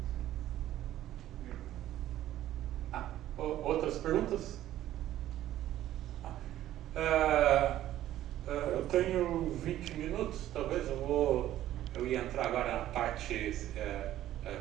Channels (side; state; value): left; quieter; 13.2 dB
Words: Outras perguntas? Eu tenho 20 minutos, talvez eu ia entrar agora na parte,